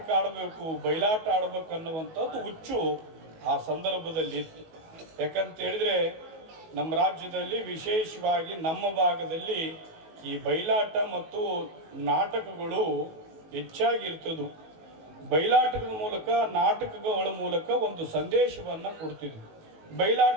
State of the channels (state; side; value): late; left; 19 ms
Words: ಆಡಬೇಕು, ಬಯಲಾಟ ಆಡಬೇಕು ಅನ್ನುವಂಥದ್ದು ಹುಚ್ಚು ಆ ಸಂದರ್ಭದಲ್ಲಿ ಇತ್ತು. ಯಾಕಂತ ಹೇಳಿದ್ರೆ ನಮ್ಮ ರಾಜ್ಯದಲ್ಲಿ ವಿಶೇಷವಾಗಿ ನಮ್ಮ ಭಾಗದಲ್ಲಿ ಈ ಬಯಲಾಟ ಮತ್ತು ನಾಟಕಗಳು ಹೆಚ್ಚಾಗಿರ್ತದ್ದು. ಬಯಲಾಟದ ಮೂಲಕ, ನಾಟಕಗಳ ಮೂಲಕ ಒಂದು ಸಂದೇಶವನ್ನು ಕೊಡ್ತಿದ್ವಿ.